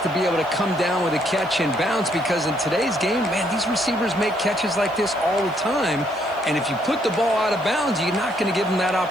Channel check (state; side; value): noise; left; hiss, 28 dB below the sound